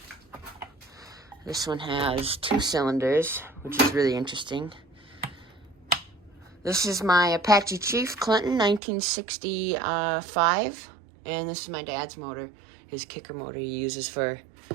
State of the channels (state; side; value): drops out; left; at 8.8 s